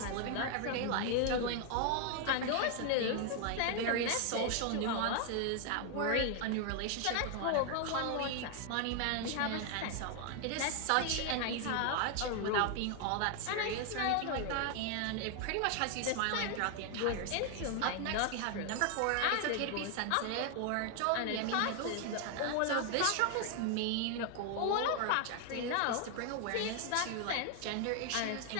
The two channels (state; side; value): different; both; correlation 0.00